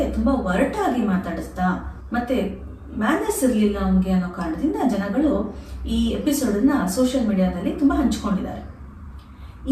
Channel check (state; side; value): identical; both; correlation 1.00